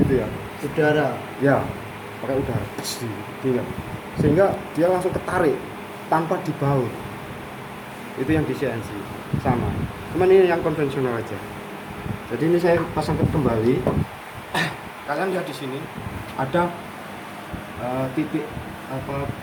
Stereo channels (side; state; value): both; identical; correlation 1.00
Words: ya. Udara. Ya, pakai udara. Gitu. Sehingga dia langsung ketarik tanpa dibaut. Itu yang di CNC sama. Cuman ini yang konvensional aja. Jadi ini saya pasangkan kembali. Kalian lihat di sini ada titik apa